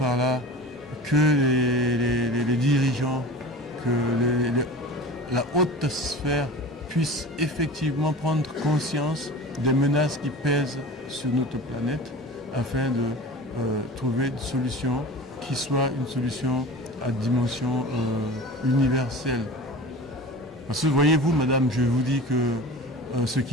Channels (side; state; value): both; normal; correlation 0.36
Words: là que les dirigeants, que la haute sphère puisse effectivement prendre conscience des menaces qui pèsent sur notre planète afin de trouver une solution qui soit une solution à dimension universelle. Parce que voyez-vous, madame, je vous dis que ce